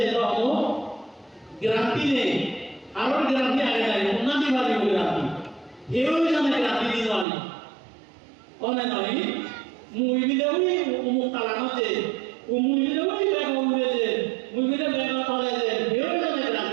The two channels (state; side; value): drops out; left; at 7.2 s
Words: এটা হলো গ্রান্টি নেই আরো গ্রান্টি আগে যায় উন্নতি ভাবে গ্রান্টি এও জানে গ্রান্টি দিন আমি অনেক নয় মুইবিলেও মুখ তালানোতে মুইবিলেও ব্যাগ উড়েছে মুইবিলে ব্যাগ কলেজে এও জানে